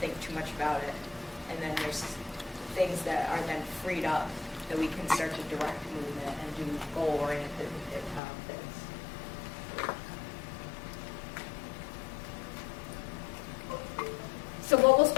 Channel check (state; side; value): drops out; right; at 8.2 s